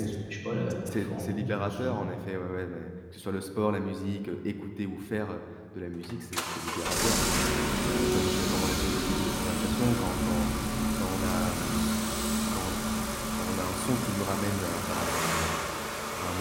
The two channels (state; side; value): identical; both; correlation 1.00